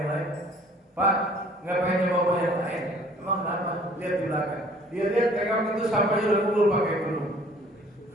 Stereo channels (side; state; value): both; normal; correlation 0.54